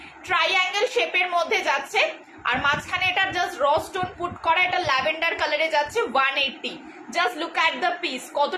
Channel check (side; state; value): both; identical; correlation 1.00